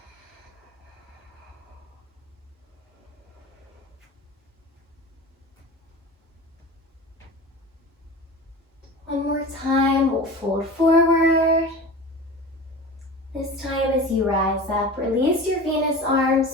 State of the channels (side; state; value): both; normal; correlation 0.33